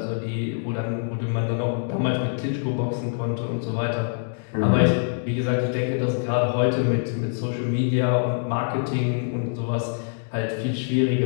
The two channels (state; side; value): silent; right; digital silence